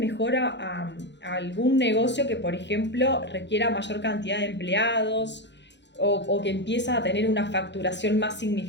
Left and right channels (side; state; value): right; late; 0.52 ms